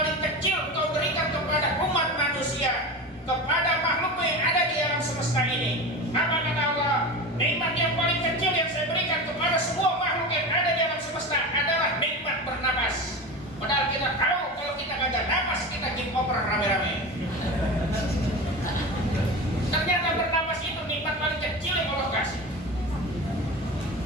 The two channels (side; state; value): both; normal; correlation 0.27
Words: kecil Engkau berikan kepada umat manusia, kepada makhluk yang ada di alam semesta ini? Apa kata Allah? Nikmat yang paling kecil yang saya berikan kepada semua makhluk yang ada di alam semesta adalah nikmat bernapas. Padahal kita tahu kalau kita gak ada napas, kita game over rame-rame. Ternyata bernapas itu nikmat paling kecil yang Allah kasih.